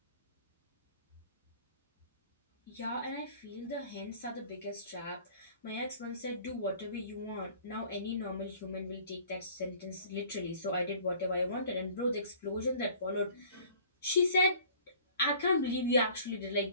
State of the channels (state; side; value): inverted; both; correlation -0.50